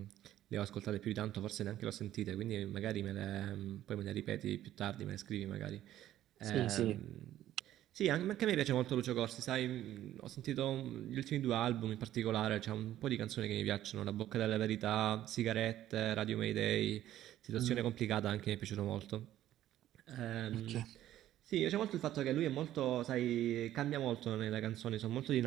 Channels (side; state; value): left; quieter; 12.9 dB